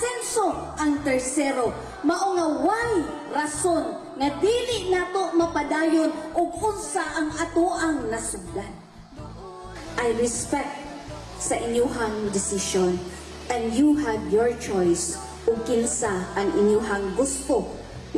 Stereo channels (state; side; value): identical; both; correlation 1.00